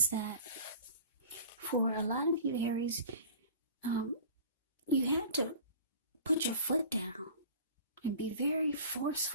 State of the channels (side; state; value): both; inverted; correlation -0.42